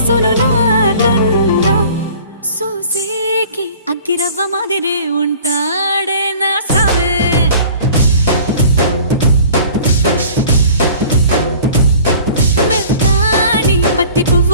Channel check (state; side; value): inverted; both; correlation -0.46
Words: నాకన్నా చూసేకి అగ్గిరవ్వ మాదిరే ఉంటాడే నా సావే. మెత్తాని పత్తి